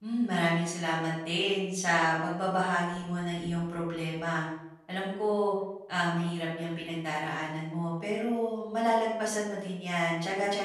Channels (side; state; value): both; identical; correlation 1.00